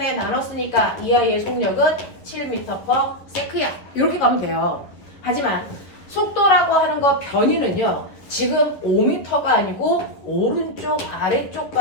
나눴으니까 이 아이의 속력은 7m/s야. 이렇게 가면 돼요. 하지만 속도라고 하는 거 변이는요. 지금 5m가 아니고 오른쪽 아래쪽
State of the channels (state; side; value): late; right; 11 ms